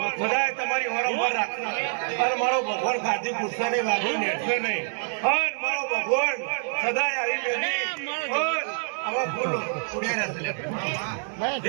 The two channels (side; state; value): left; silent; 61 dB below the other